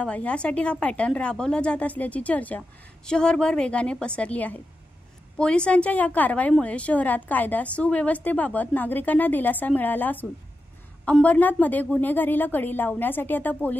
यासाठी हा पॅटर्न राबवला जात असल्याची चर्चा शहरभर वेगाने पसरली आहे। पोलिसांच्या या कारवाईमुळे शहरात कायदा सुव्यवस्थेबाबत नागरिकांना दिलासा मिळाला असून अंबरनाथमध्ये गुन्हेगारीला कडी लावण्यासाठी आता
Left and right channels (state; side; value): normal; both; correlation 0.90